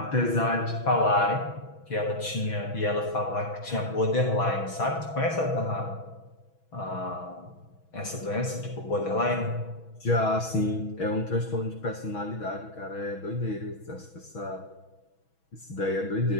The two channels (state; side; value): late; right; 6.2 ms